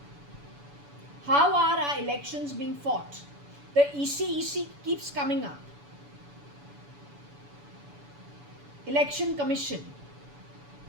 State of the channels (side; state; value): left; late; 7.0 ms